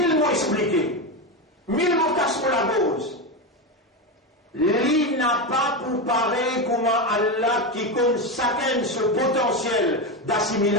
mots expliqués, 1000 mots cassent pour la cause. Lui n'a pas pour pareil comment Allah qui compte chacun ce potentiel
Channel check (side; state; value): both; normal; correlation 0.14